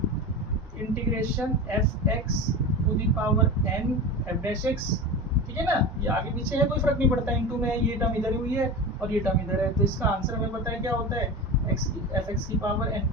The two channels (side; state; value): both; normal; correlation 0.27